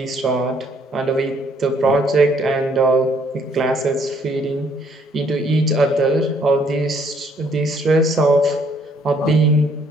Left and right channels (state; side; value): normal; both; correlation 0.65